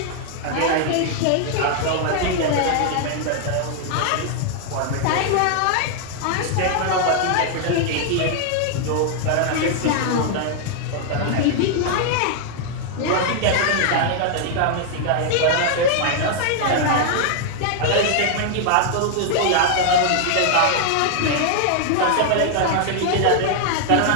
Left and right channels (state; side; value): different; both; correlation 0.00